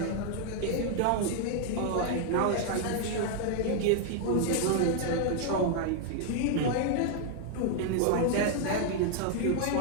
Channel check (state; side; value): different; both; correlation 0.00